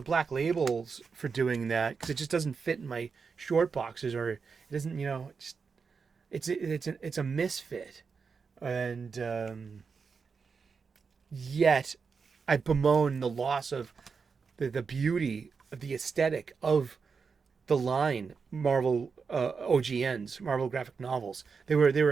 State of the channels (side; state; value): left; quieter; 5.4 dB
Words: labels for doing that because it just doesn't fit in my short boxes, or it doesn't, it's a misfit, and yet I bemoan the loss of the beauty of the aesthetic of the line Marvel OGNs, Marvel graphic novels. They were